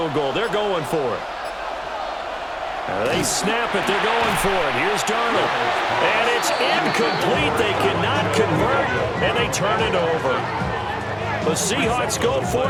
goal. They're going for it. They snap it. They're going for it. Here's Darnold. And it's incomplete. They cannot convert, and they turn it over. The Seahawks go for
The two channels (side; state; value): both; identical; correlation 1.00